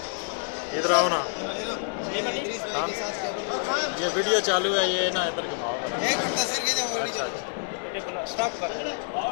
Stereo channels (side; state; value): right; silent; 60 dB below the other